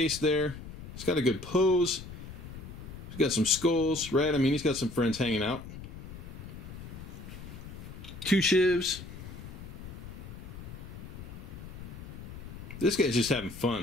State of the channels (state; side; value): noise; left; rumble, 12 dB below the sound